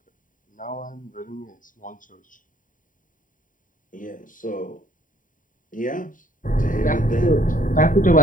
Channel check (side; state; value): right; late; 0.39 ms